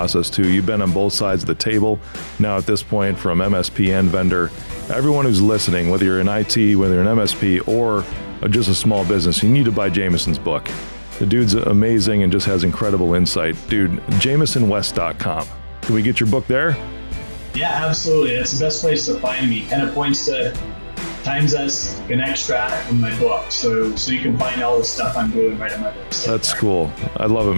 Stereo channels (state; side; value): inverted; both; correlation -1.00